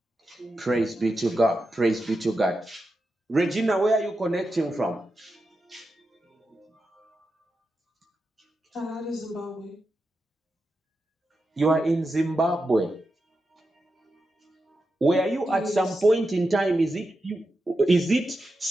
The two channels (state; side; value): normal; both; correlation 0.89